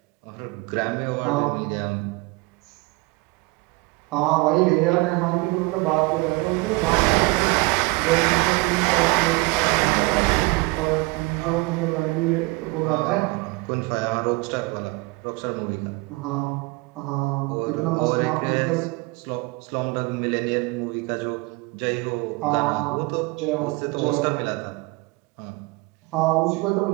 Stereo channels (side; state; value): left; quieter; 24.7 dB